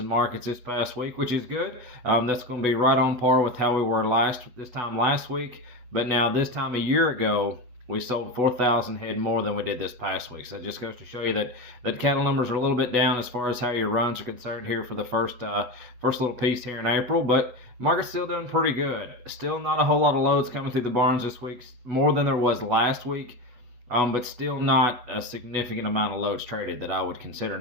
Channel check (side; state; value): left; late; 8.2 ms